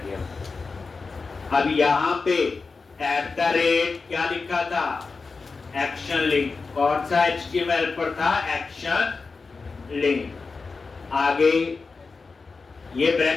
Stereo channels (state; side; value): quieter; right; 4.4 dB